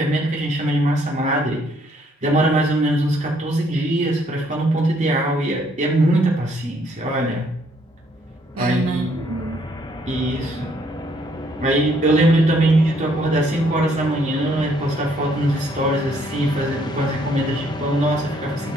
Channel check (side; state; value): both; normal; correlation 0.67